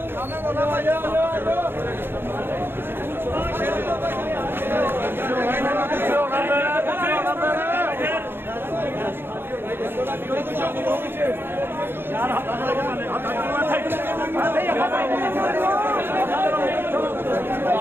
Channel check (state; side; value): late; left; 0.10 ms